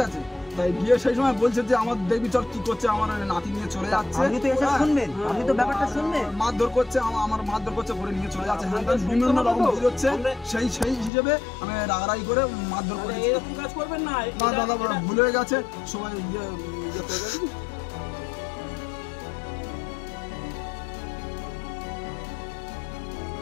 আছে, তাই গিয়ে সেই সময় বলছে যে আমার দেখবি চল কি করছে, আমার নাতি নিয়ে চলে যাচ্ছে। আপনি তো এসে শুনবেন, আপনি তো ব্যাপারটা শুনবেন। মারধর করছে, আমার মারধর করছে, করে নিয়ে চলে যাচ্ছে, হ্যাঁ বিভিন্ন রকম বুঝ হচ্ছে, সেই হিসেবে আমি রাগারাগি করে মারধর করেছি। এরকম কাজ করবেন না। না দাদা ভুল হয়ে গেছে, সবাই ইয়ে করে গেছে।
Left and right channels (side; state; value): right; drops out; at 11.1 s